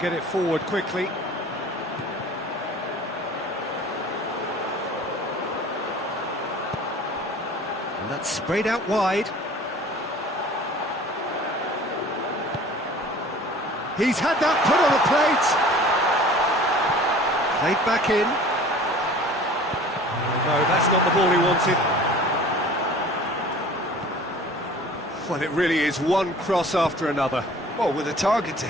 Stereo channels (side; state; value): both; normal; correlation 0.45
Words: it forward quickly. And that's sprayed out wide. He's had that put on a plate. Played back in. No, that's not the ball he wanted. Well, it really is one cross after another. Well, with a target to